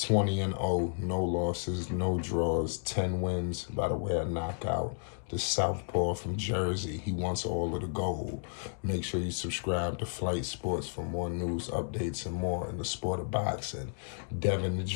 no losses, no draws, 10 wins by the way of knockout. The Southpaw from Jersey, he wants all of the gold. Make sure you subscribe to Flight Sports for more news, updates, and more in the sport of boxing. Devin the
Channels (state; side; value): silent; right; digital silence